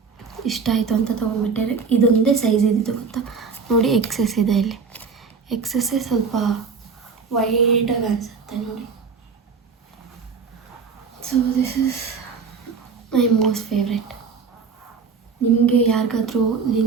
ಇಷ್ಟ ಆಯಿತು ಅಂತ ತೊಗೊಂಡ್ಬಿಟ್ಟೆ. ಇದೊಂದೇ ಸೈಜ್ ಇದ್ದಿದ್ದು ಗೊತ್ತಾ ನೋಡಿ, ಎಕ್ಸೆಸ್ ಇದೆ ಇಲ್ಲಿ. ಎಕ್ಸೆಸ್ಸೇ ಸ್ವಲ್ಪ ವೈಡಾಗಿ ಅನಿಸುತ್ತೆ ನೋಡಿ. So this is my most favourite. ನಿಮಗೆ ಯಾರಿಗಾದ್ರೂ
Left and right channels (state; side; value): quieter; left; 5.4 dB